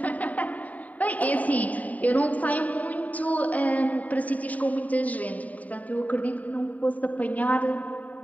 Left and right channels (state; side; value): late; right; 0.072 ms